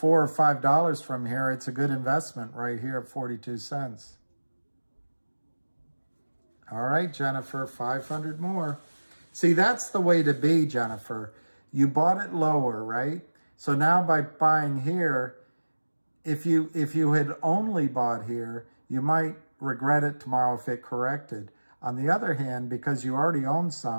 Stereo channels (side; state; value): both; inverted; correlation -1.00